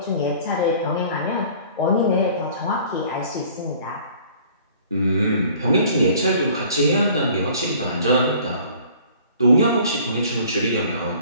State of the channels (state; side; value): inverted; both; correlation -0.52